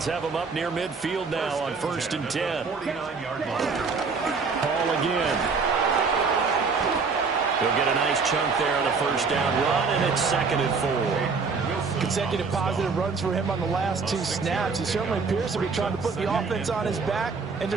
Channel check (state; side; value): quieter; left; 4.8 dB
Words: have him up near midfield now on 1st and 10. Paul again. He'll get a nice chunk there on the first down run, and it's 2nd and 4. Consecutive positive runs for him on the last 2 snaps. He certainly appears to be trying to put the offense on his back and